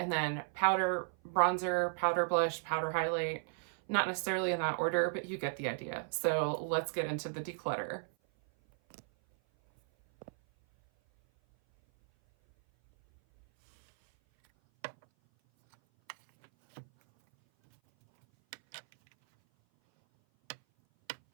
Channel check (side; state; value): left; silent; 55 dB below the other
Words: then powder bronzer, powder blush, powder highlight. Not necessarily in that order, but you get the idea. So let's get into the declutter.